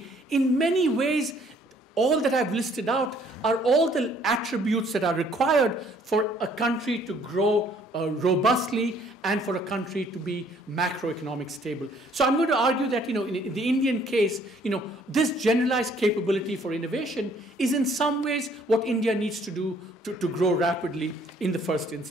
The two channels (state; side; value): normal; both; correlation 0.61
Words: in many ways, all that I've listed out are all the attributes that are required for a country to grow robustly and for a country to be macroeconomic stable. So I'm going to argue that, in the Indian case, this generalized capability for innovation is in some ways what India needs to do to grow rapidly in the first